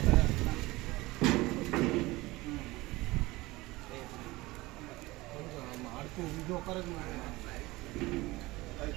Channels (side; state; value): left; quieter; 20.5 dB